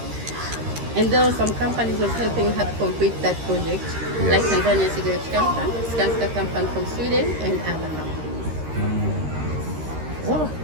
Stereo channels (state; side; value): late; left; 13 ms